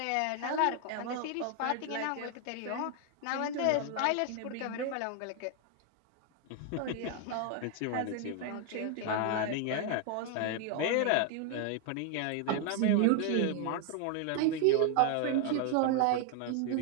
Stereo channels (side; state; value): both; different; correlation 0.00